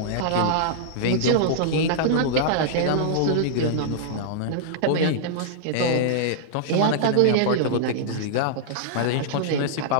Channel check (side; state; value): both; different; correlation -0.02